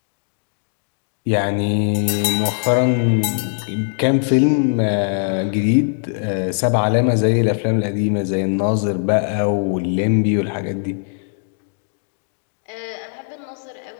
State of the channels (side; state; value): right; silent; digital silence